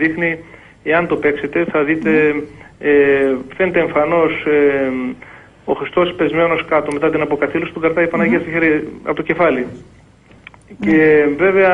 εάν το παίξετε, θα δείτε, φαίνεται εμφανώς ο Χριστός πεσμένος κάτω μετά την αποκαθήλωση, του κρατάει η Παναγία στο χέρι από το κεφάλι. Και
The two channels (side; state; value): both; identical; correlation 1.00